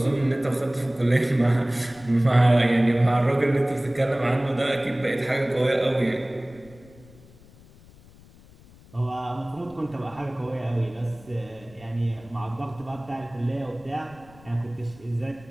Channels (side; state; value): left; noise; rumble, 24 dB below the sound